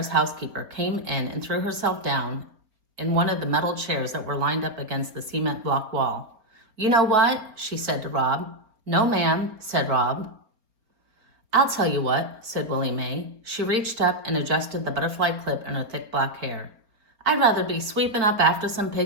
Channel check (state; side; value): late; left; 4.3 ms